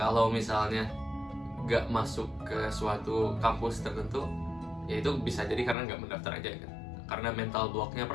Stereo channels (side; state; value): right; drops out; at 5.8 s